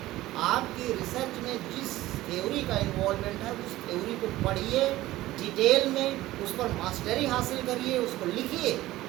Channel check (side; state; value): left; quieter; 16.5 dB